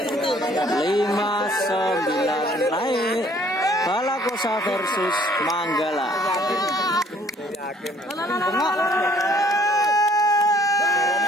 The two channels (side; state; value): both; normal; correlation 0.59